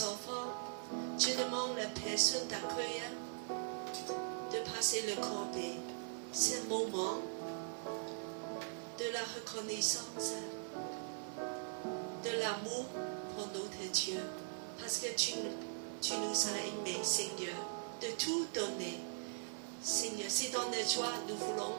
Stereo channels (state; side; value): silent; left; digital silence